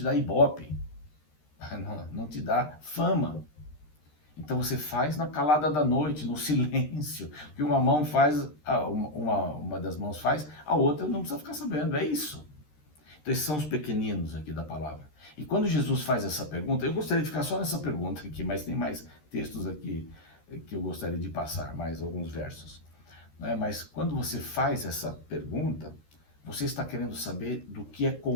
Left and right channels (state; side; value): late; right; 13 ms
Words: dá ibope, não te dá fama. Então você faz na calada da noite, no silêncio. O que uma mão faz, uma das mãos faz, a outra não precisa ficar sabendo, é isso. Então esses são os pequeninos aqui da palavra. E quando Jesus faz essa pergunta, eu gostaria de ficar só nessa pergunta aqui, mas tem mais textos aqui que eu gostaria de passar, mais alguns versos. Mas quando você faz essa pergunta, você está querendo saber do que é